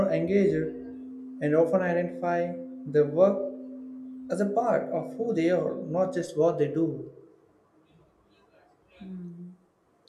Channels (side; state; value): both; identical; correlation 1.00